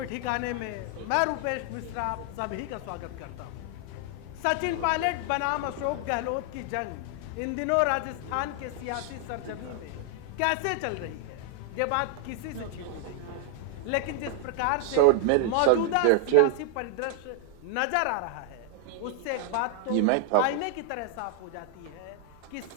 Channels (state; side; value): different; both; correlation 0.00